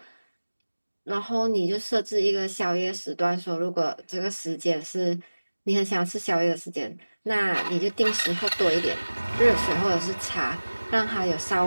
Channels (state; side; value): inverted; both; correlation -1.00